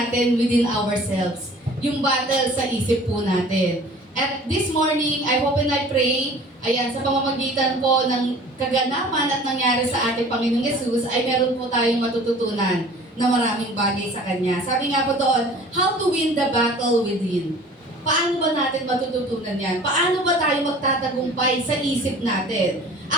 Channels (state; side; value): normal; both; correlation 0.47